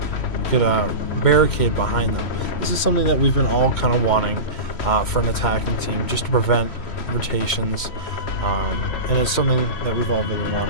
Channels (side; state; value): right; late; 3.1 ms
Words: could barricade behind them. This is something that we've been all kind of wanting for an attacking team, just to prevent rotations. And it's something that we've all been